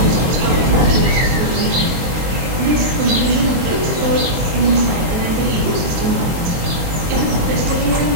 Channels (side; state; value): left; late; 23 ms